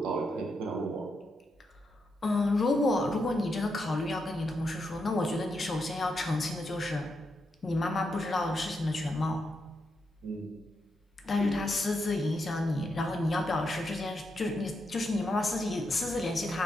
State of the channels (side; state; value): both; normal; correlation 0.83